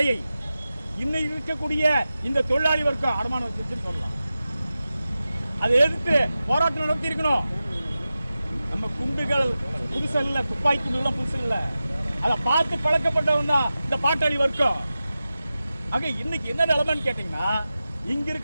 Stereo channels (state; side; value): inverted; both; correlation -0.94